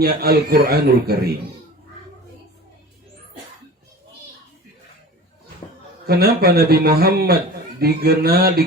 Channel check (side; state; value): both; normal; correlation 0.38